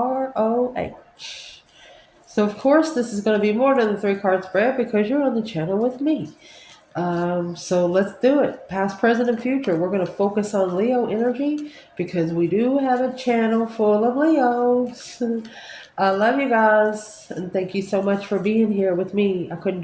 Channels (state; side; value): identical; both; correlation 1.00